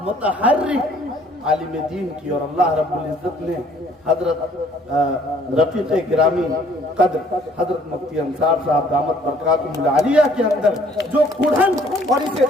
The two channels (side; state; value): both; normal; correlation 0.59